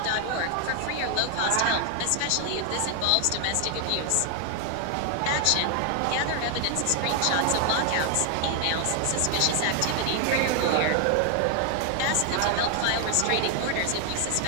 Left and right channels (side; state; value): both; different; correlation 0.00